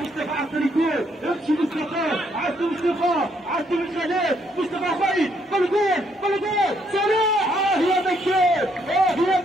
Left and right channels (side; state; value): both; normal; correlation 0.72